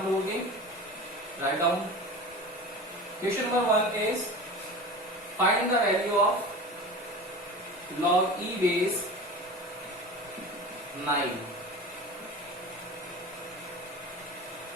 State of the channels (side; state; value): both; normal; correlation 0.33